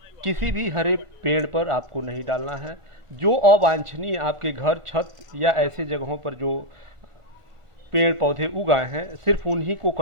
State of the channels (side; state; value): left; late; 1.4 ms